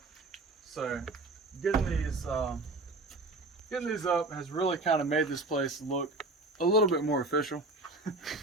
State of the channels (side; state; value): left; quieter; 3.1 dB